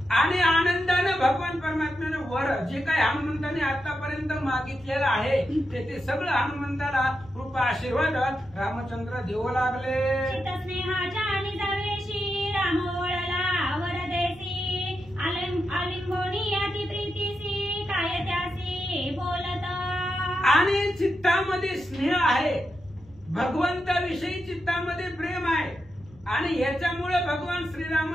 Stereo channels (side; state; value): left; noise; rumble, 25 dB below the sound